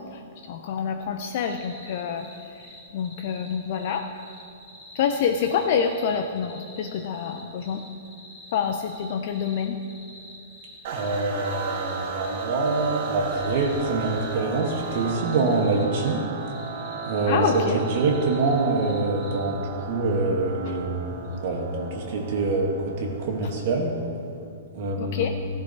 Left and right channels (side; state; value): both; inverted; correlation -0.31